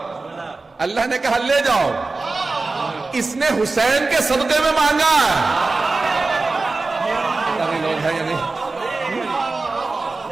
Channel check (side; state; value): left; quieter; 3.6 dB